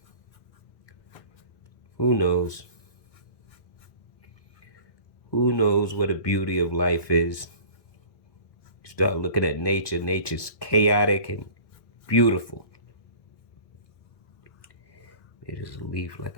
Who knows? Who knows what the beauty of life is? You start looking at nature. Nature's chaotic and beautiful. There's a leaf, like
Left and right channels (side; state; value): right; late; 1.6 ms